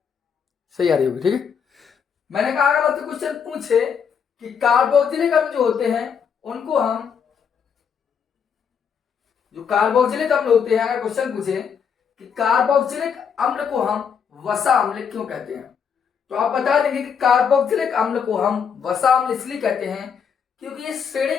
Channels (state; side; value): quieter; right; 6.9 dB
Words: सही आ रही होगी, ठीक है। मैंने कहा अगर आपसे क्वेश्चन पूछे कि कार्बोक्सिलिक अम्ल जो होते हैं उनको हम, जो कार्बोक्सिलिक अम्ल होते हैं, अगर क्वेश्चन पूछे कि कार्बोक्सिलिक अम्ल को हम वसा अम्ल क्यों कहते हैं, तो आप बता देंगे कि कार्बोक्सिलिक अम्ल को हम वसा अम्ल इसलिए कहते हैं क्योंकि इस श्रेणी